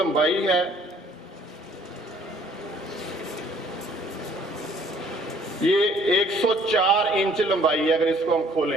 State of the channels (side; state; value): both; normal; correlation 0.59